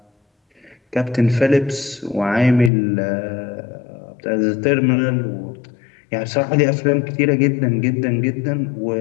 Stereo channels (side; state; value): right; drops out; at 2.7 s